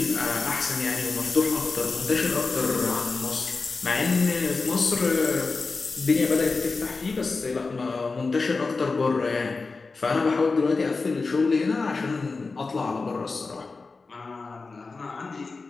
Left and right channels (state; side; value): quieter; right; 4.1 dB